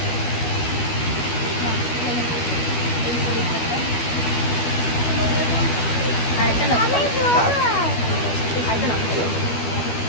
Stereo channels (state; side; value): late; right; 12 ms